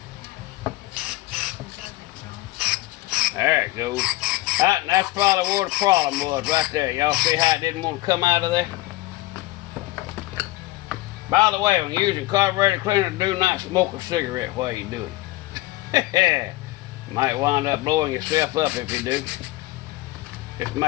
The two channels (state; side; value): quieter; right; 18.8 dB